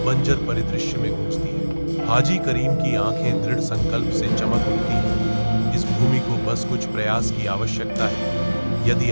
बंजर परिदृश्य में गूंजती है। हाजी करीम की आंखें दृढ़ संकल्प से चमक उठती हैं। इस भूमि को बस कुछ प्रयास की आवश्यकता है। यदि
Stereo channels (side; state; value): both; inverted; correlation -1.00